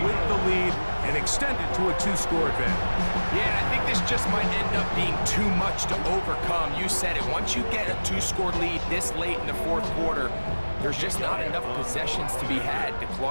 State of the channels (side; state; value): both; inverted; correlation -1.00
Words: with the lead and extend it to a 2-score advantage. Yeah, and I think this just might end up being too much to overcome. You said it. Once you get a 2-score lead this late in the fourth quarter, there's just not enough possessions to be had to